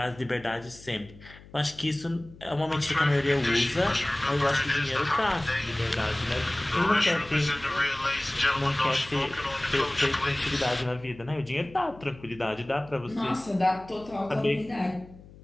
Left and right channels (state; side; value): noise; left; hum, 21 dB below the sound